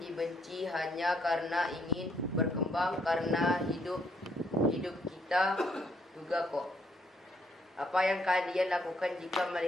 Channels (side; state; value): both; normal; correlation 0.71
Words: hanya karena ingin berkembang, karena hidup kita juga kok. Apa yang kalian lakukan jika